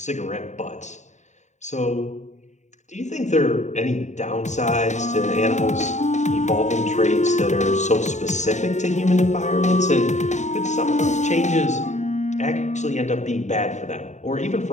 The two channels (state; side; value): late; right; 0.34 ms